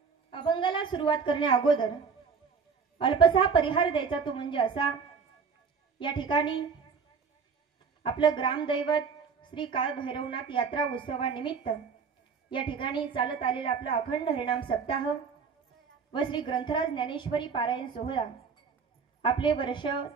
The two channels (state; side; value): quieter; left; 5.7 dB